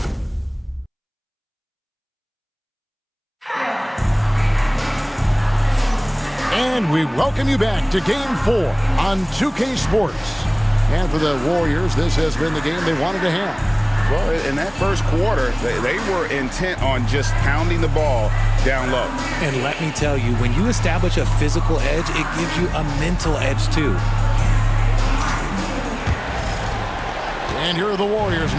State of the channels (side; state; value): both; identical; correlation 1.00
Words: And we welcome you back to Game 4 on 2K Sports. And for the Warriors, this has been the game they wanted to have. Well, in that first quarter, they were intent on just pounding the ball down low. And let me tell you, when you establish a physical edge, it gives you a mental edge too. And here are the Warriors